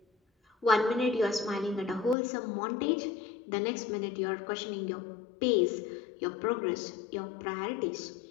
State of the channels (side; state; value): right; drops out; at 2.1 s